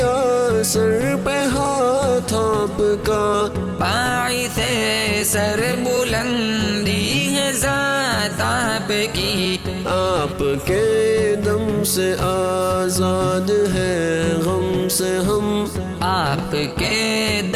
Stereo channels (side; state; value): both; identical; correlation 1.00